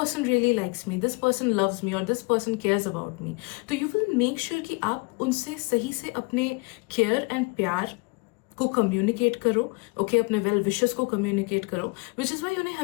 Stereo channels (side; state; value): right; quieter; 29.6 dB